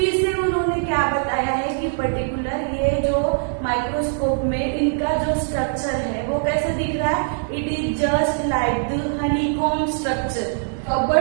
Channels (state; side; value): silent; left; digital silence